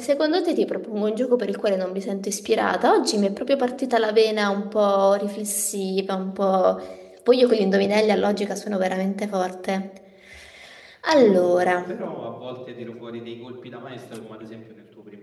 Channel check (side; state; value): both; identical; correlation 1.00